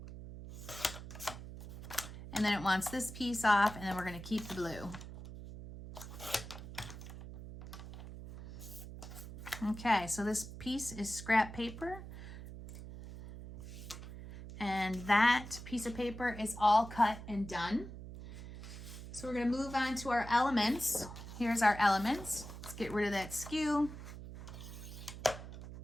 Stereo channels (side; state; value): right; noise; hum, 11 dB below the sound